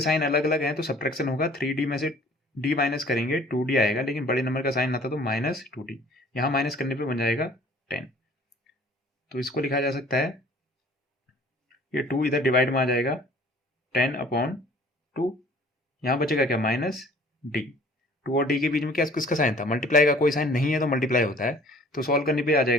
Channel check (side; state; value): both; normal; correlation 0.52